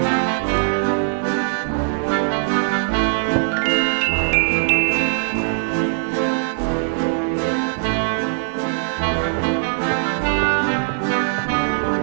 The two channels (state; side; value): silent; left; digital silence